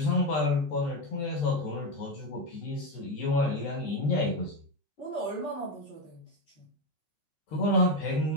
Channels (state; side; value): late; right; 13 ms